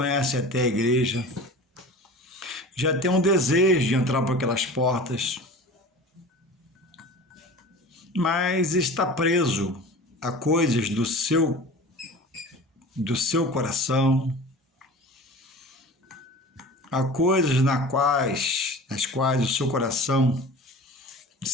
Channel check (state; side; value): normal; both; correlation 0.38